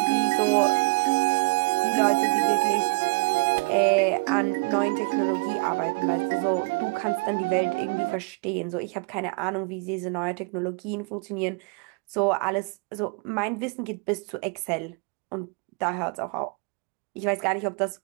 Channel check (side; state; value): left; quieter; 30.2 dB